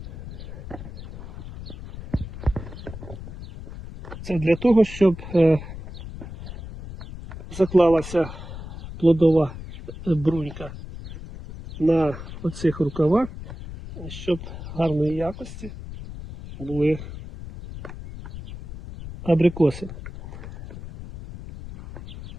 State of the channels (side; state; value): left; noise; rumble, 12 dB below the sound